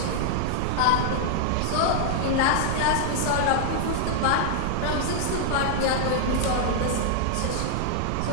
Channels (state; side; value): different; both; correlation -0.01